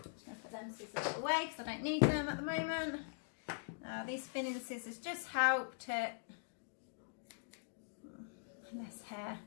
Just going to put them scissors away because I don't need them at the moment. These thinning scissors just help to less hair.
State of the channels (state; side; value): silent; right; digital silence